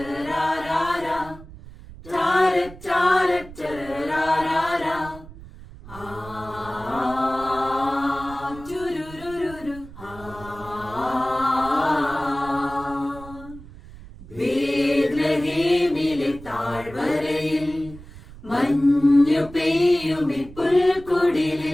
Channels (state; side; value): noise; right; rumble, 17 dB below the sound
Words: tara tara tararara. Turururu, ബേത്ലഹേമിലെ താഴ്വരയിൽ മഞ്ഞു പെയ്യുമി